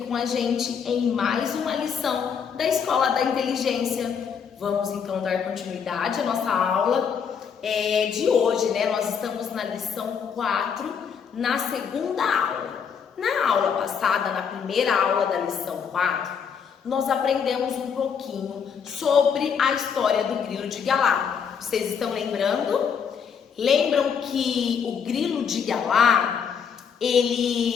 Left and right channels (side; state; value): right; quieter; 6.9 dB